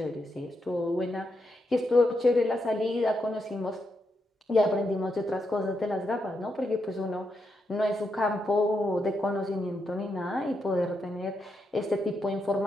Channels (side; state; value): both; normal; correlation 0.83